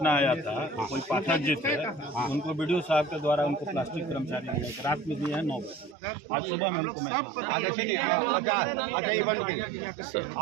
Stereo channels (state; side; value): drops out; left; at 6.0 s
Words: आया था, कोई पाठक जी थे, उनको बीडीओ साहब के द्वारा उनको प्लास्टिक कर्मचारी रात में दिए हैं 9 बजे, आज सुबह में हमको